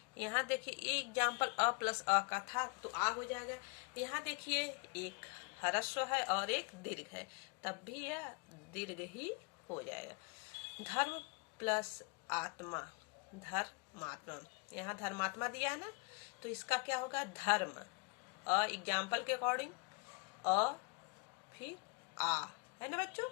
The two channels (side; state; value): right; quieter; 31.6 dB